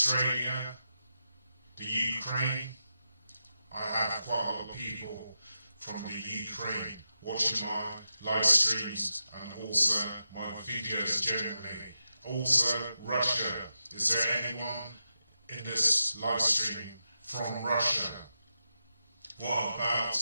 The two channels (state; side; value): inverted; both; correlation -0.87